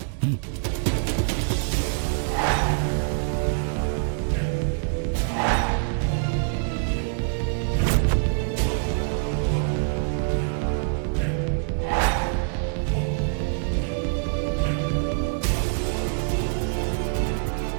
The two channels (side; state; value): left; silent; digital silence